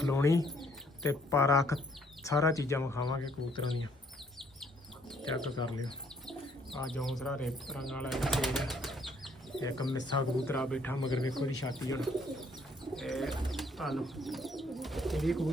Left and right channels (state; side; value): normal; both; correlation 0.65